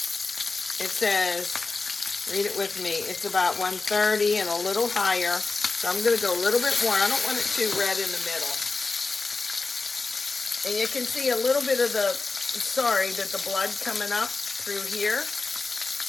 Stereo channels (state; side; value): quieter; right; 3.9 dB